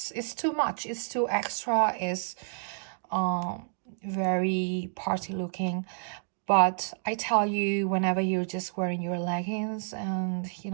too much, it's too extra, it's very party looking. But I tell you, whenever you're just wearing your leggings and, you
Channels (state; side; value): silent; left; digital silence